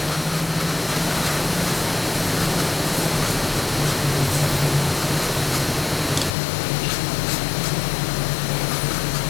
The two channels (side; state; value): right; drops out; at 6.3 s